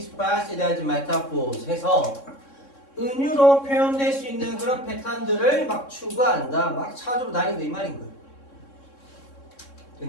as metaphors 해서 은유로 표현될 수 있는 그런 패턴들을 막 추구한다, 막 찾으러 다닌다 이 말인 거예요.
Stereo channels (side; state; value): right; late; 3.6 ms